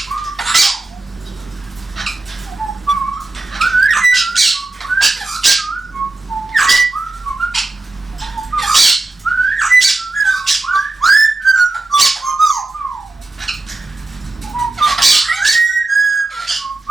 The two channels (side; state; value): left; quieter; 3.1 dB